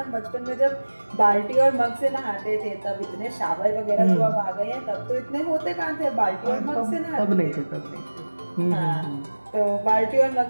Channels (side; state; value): both; inverted; correlation -1.00